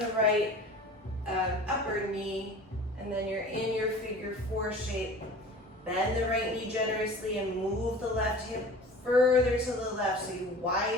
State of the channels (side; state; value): both; normal; correlation 0.41